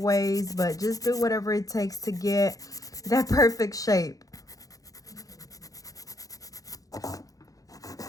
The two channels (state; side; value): late; right; 0.17 ms